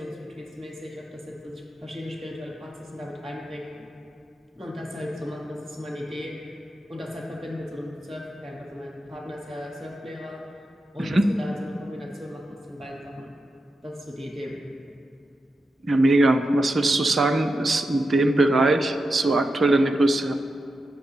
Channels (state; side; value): normal; both; correlation 0.89